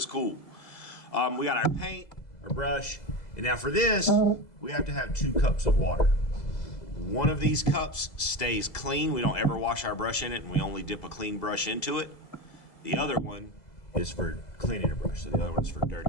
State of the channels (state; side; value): late; right; 2.0 ms